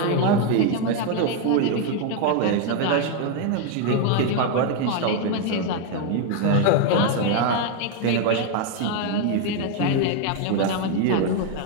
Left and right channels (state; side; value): different; both; correlation 0.01